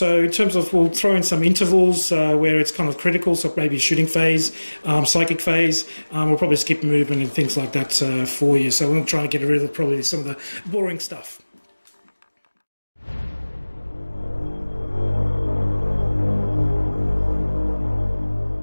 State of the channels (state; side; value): inverted; both; correlation -1.00